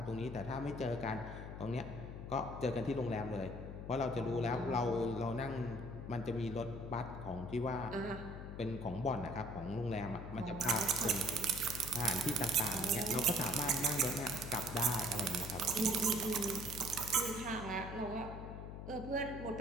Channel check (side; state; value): left; noise; hum, 9 dB below the sound